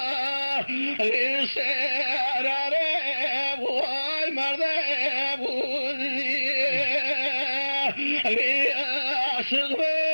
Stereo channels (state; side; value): inverted; both; correlation -1.00